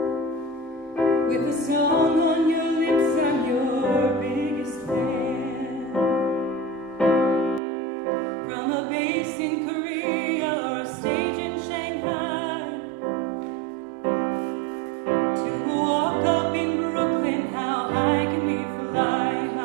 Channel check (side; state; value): left; drops out; at 7.6 s